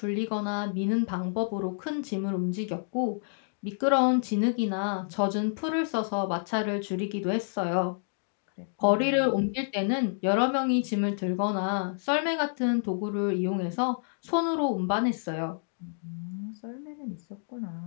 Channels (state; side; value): silent; right; digital silence